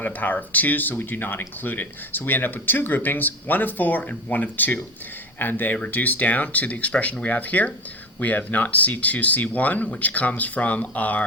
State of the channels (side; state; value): both; normal; correlation 0.26